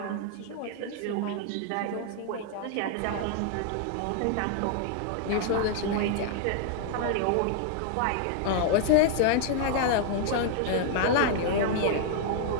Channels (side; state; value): both; different; correlation 0.00